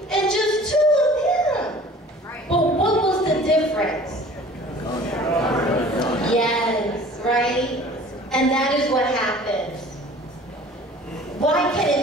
and just 2 of them. But what was the difference? Yes, right? And that is what happens. Why can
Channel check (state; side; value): normal; both; correlation 0.47